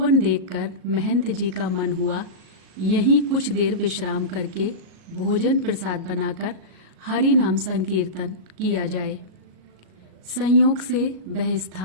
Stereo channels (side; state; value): left; late; 38 ms